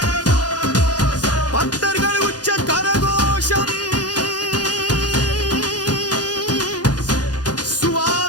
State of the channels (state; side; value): late; right; 0.69 ms